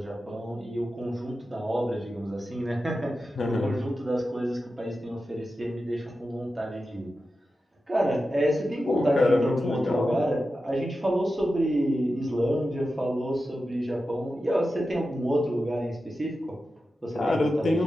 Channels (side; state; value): both; normal; correlation 0.92